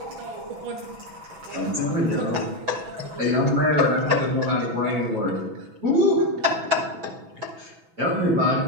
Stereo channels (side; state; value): left; late; 6.1 ms